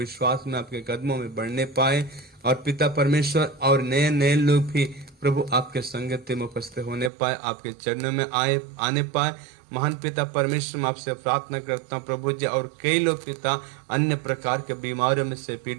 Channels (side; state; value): left; drops out; at 7.1 s